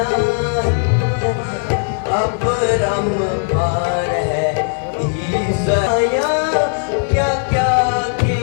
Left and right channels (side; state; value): right; silent; 68 dB below the other